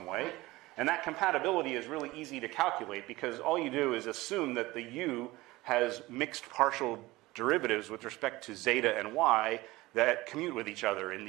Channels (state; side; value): quieter; left; 19.7 dB